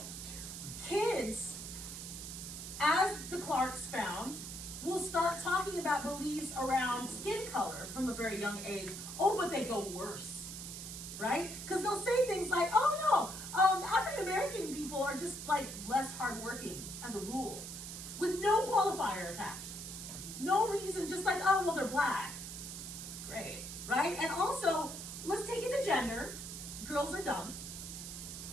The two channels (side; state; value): right; noise; hiss, 8 dB below the sound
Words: kids, as the Clarks found, will start talking about beliefs around skin color from a very young age. Oh, but they go worse, right? Because they'll say things like, oh no, African American people are just like less hardworking as a rule, with no qualifier attached. No reason, just like, oh, well, they're black. Great, right? And also, let's take it to gender. Girls are dumb,